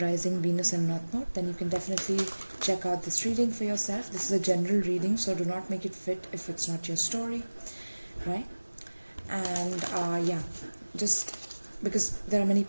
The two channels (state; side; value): inverted; both; correlation -1.00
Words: Venus and North Node, then you can definitely check out this reading for yourself. This is a general reading, so do not make it fit if it's not your story, right? And just because there are many